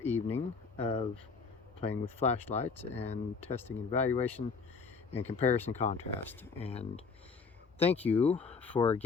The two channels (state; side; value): quieter; right; 5.0 dB